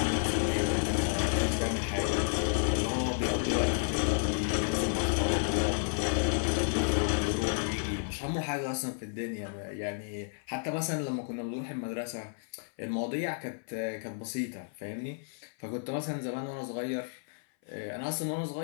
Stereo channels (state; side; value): silent; right; 57 dB below the other